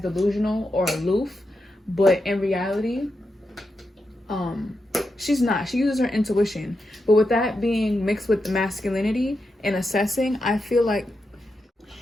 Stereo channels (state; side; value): normal; both; correlation 0.87